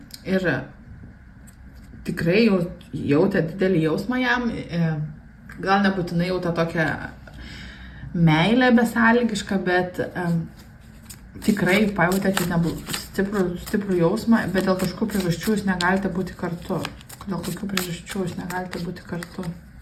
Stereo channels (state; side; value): identical; both; correlation 1.00